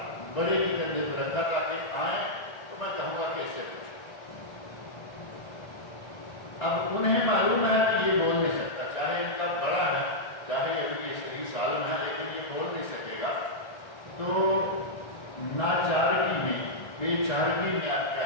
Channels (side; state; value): right; late; 1.6 ms